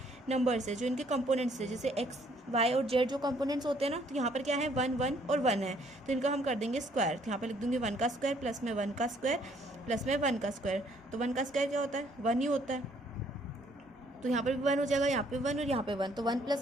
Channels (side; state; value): both; normal; correlation 0.64